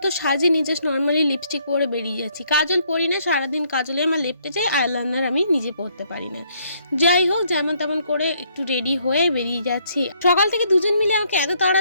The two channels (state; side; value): inverted; both; correlation -0.68